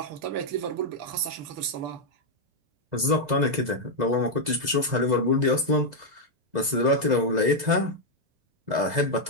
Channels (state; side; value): late; left; 2.0 ms